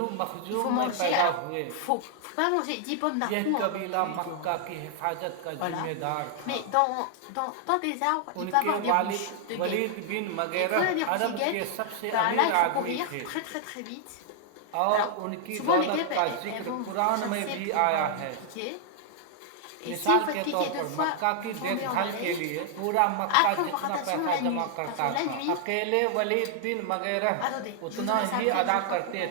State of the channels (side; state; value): both; different; correlation 0.00